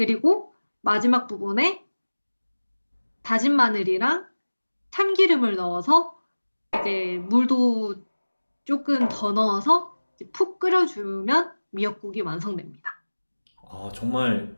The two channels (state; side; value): inverted; both; correlation -1.00